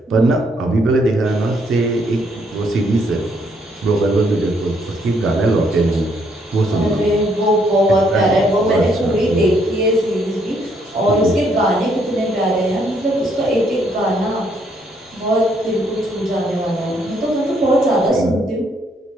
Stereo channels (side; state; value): both; normal; correlation 0.71